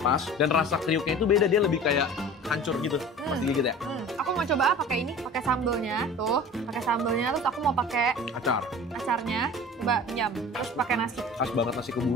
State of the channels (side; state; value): both; normal; correlation 0.40